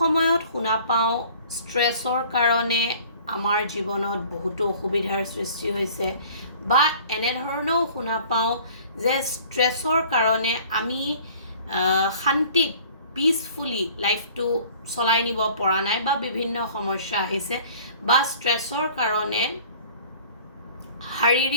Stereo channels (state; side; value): inverted; both; correlation -0.50